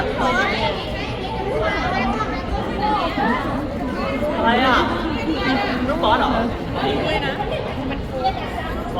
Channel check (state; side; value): identical; both; correlation 1.00